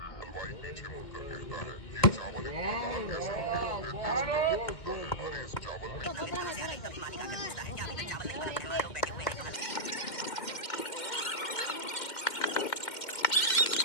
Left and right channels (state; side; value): late; right; 2.1 ms